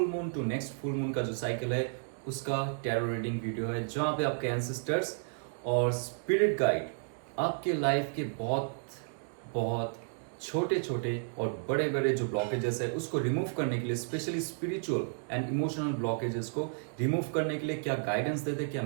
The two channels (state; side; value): silent; left; digital silence